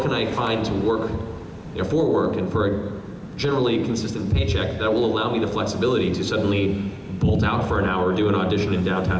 can I find to work, for work and for a generally consistent paycheck that will allow me the flexibility to suddenly bolt out for an hour, do an audition in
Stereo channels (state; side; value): identical; both; correlation 1.00